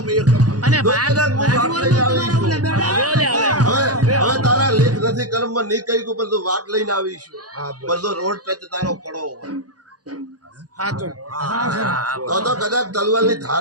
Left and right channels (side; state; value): left; late; 0.68 ms